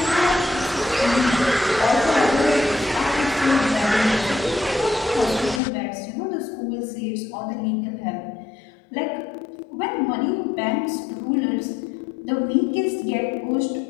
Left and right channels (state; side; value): drops out; right; at 5.6 s